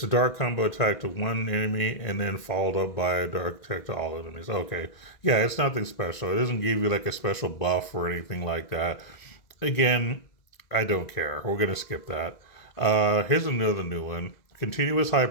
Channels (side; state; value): right; late; 2.0 ms